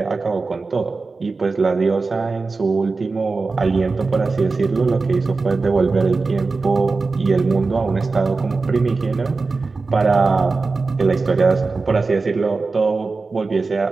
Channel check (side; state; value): left; quieter; 4.0 dB